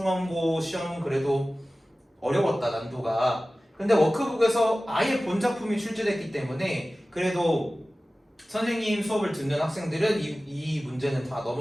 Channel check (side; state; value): both; normal; correlation 0.97